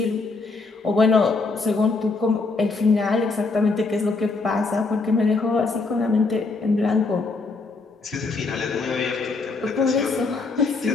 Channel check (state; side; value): quieter; right; 3.9 dB